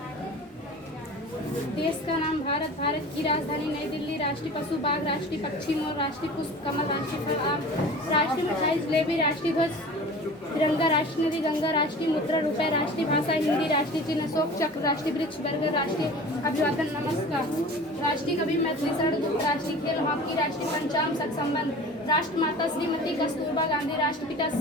देश का नाम भारत। भारत की राजधानी नई दिल्ली। राष्ट्रीय पशु बाघ। राष्ट्रीय पक्षी मोर। राष्ट्रीय पुष्प कमल। राष्ट्रीय फल आम। राष्ट्रीय मिठाई जलेबी। राष्ट्रीय ध्वज तिरंगा। राष्ट्रीय नदी गंगा। राष्ट्रीय मुद्रा रुपए। राष्ट्रीय भाषा हिंदी। राष्ट्रीय चिन्ह अशोक चक्र। राष्ट्रीय वृक्ष बरगद। राष्ट्रीय अभिवादन नमस्कार। राष्ट्रीय कवि मैथिली शरण गुप्त। राष्ट्रीय खेल हॉकी। राष्ट्रीय पंचांग संबंध। राष्ट्रमाता श्रीमती कस्तूरबा गांधी। राष्ट्रपिता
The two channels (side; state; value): both; normal; correlation 0.39